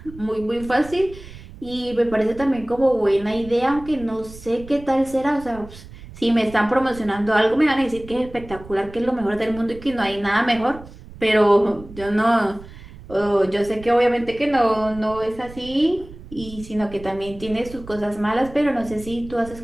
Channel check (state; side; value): noise; right; rumble, 17 dB below the sound